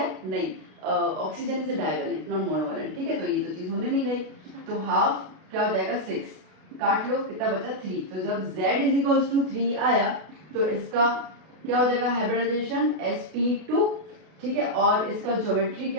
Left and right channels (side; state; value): left; late; 33 ms